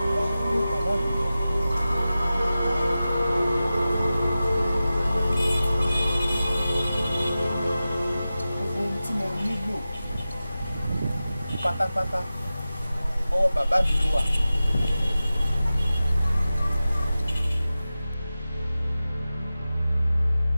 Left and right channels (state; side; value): inverted; both; correlation -0.95